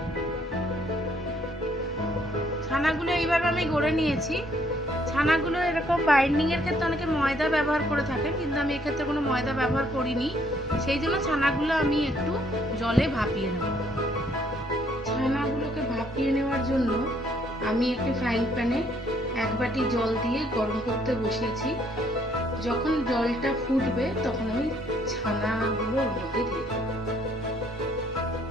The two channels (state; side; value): normal; both; correlation 0.66